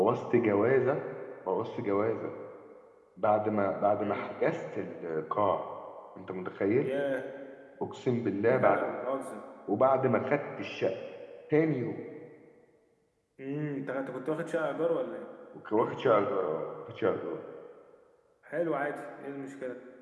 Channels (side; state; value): both; identical; correlation 1.00